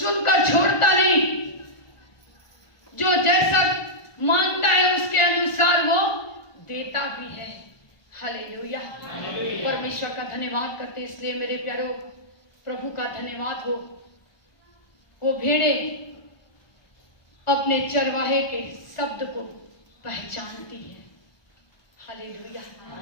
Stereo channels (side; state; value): right; late; 1.2 ms